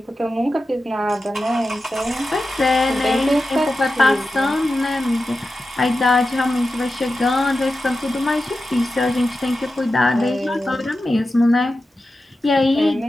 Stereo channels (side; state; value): both; normal; correlation 0.92